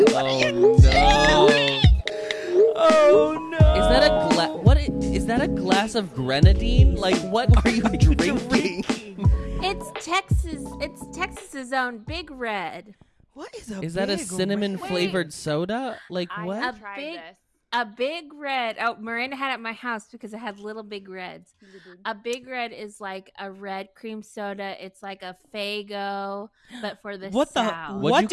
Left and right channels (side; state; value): both; identical; correlation 1.00